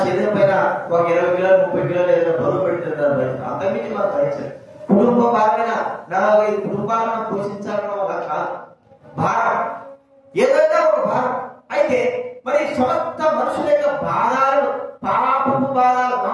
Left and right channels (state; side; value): identical; both; correlation 1.00